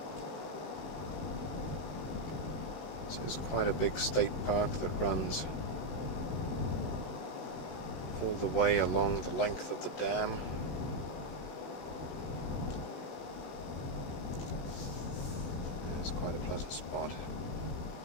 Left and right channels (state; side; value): late; right; 16 ms